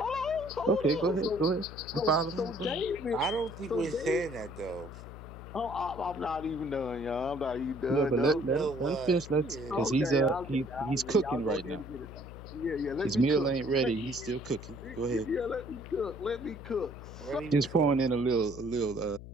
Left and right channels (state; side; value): noise; left; hum, 13 dB below the sound